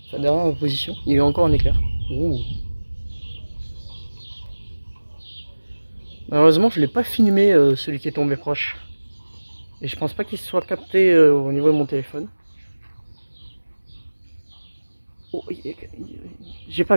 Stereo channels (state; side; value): inverted; both; correlation -1.00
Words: Enfin, derrière ma position. Il y a eu encore un éclair. Ouh. Malheureusement, je l'ai pas filmé celui qui est tombé proche. Et je pense pas qu'il se soit capté au niveau de mon téléphone. Oh, j'ai pas